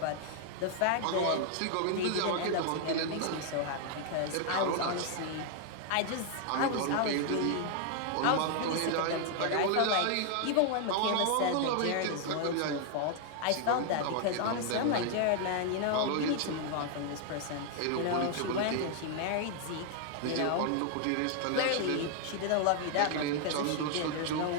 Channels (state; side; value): different; both; correlation 0.00